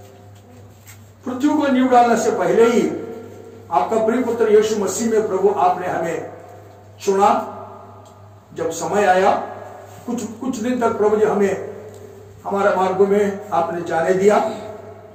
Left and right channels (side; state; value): both; identical; correlation 1.00